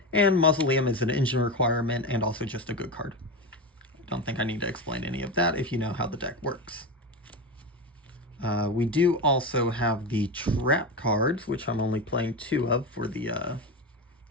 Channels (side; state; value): both; normal; correlation 0.19